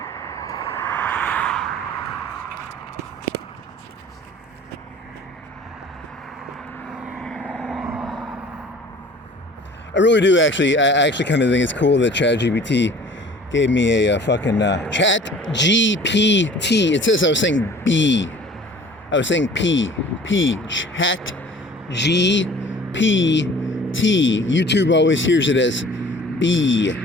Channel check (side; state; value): both; normal; correlation 0.48